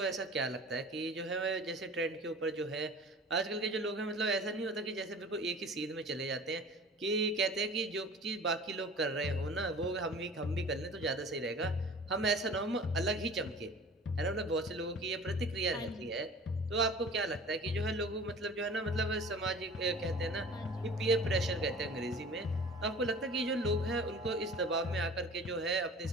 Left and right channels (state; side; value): normal; both; correlation 0.43